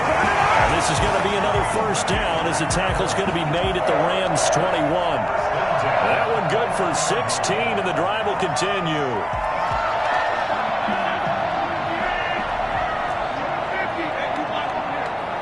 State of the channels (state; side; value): identical; both; correlation 1.00